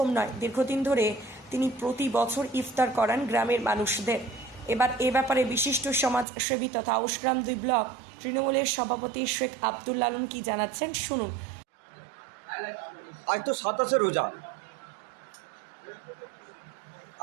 নয়, দীর্ঘদিন ধরে তিনি প্রতি বছর ইফতার করান গ্রামের মানুষদের। এবার এ ব্যাপারে বিশিষ্ট সমাজসেবী তথা আউশগ্রাম 2 ব্লক তৃণমূলের সভাপতি শেখ আব্দুল লালন কি জানাচ্ছেন, শুনুন। আজ তো 27 রোজা।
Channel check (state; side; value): drops out; left; at 6.2 s